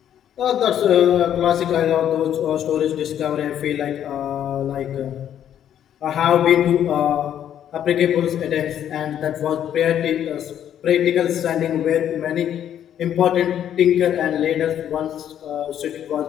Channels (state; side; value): quieter; right; 10.2 dB